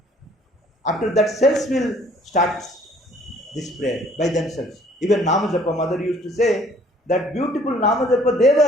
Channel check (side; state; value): both; normal; correlation 0.58